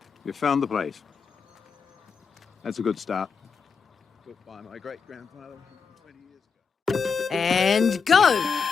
You found the place. That's a good start. Built by my great-grandfather 20 years ago. And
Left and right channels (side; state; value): right; quieter; 5.6 dB